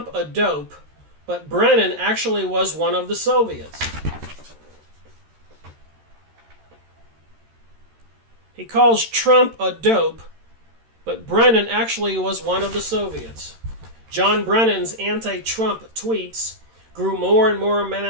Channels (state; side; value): late; left; 13 ms